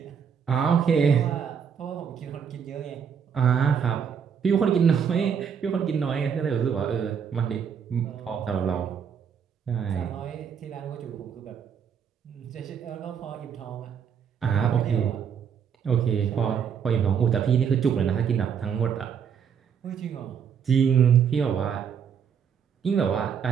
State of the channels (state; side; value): quieter; left; 7.4 dB